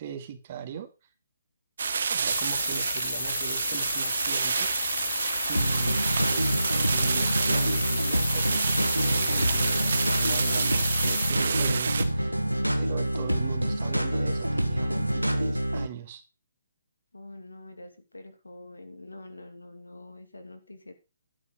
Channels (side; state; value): both; inverted; correlation -0.89